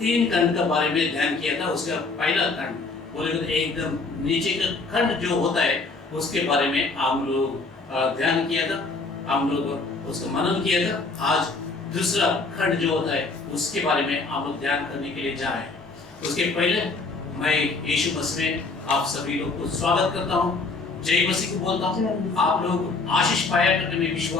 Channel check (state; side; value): quieter; right; 3.8 dB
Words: खंड के बारे में ध्यान किया था। उसका पहला खंड बोले तो एकदम नीचे का खंड जो होता है उसके बारे में हम लोग ध्यान किया था, हम लोग उसका मनन किया था। आज दूसरा खंड जो होता है उसके बारे में हम लोग ध्यान करने के लिए जा रहे हैं। उसके पहले मैं यीशु मसीह में आप सभी लोग को स्वागत करता हूँ, जय मसीह को बोलता हूँ। आप लोग आशीष पाया करके मैं